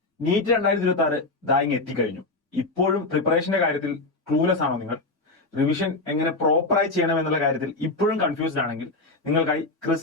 NEET 2026 ദായിങ് എത്തിക്കഴിഞ്ഞു. ഇപ്പോഴും പ്രിപ്പറേഷന്റെ കാര്യത്തിൽ ക്ലൂലെസ് ആണോ നിങ്ങൾ? റിവിഷൻ എങ്ങനെ പ്രോപ്പറായി ചെയ്യണം എന്നുള്ള കാര്യത്തിൽ ഇപ്പോഴും കൺഫ്യൂസ്ഡ് ആണെങ്കിൽ നിങ്ങൾക്കായി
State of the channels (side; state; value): right; quieter; 3.2 dB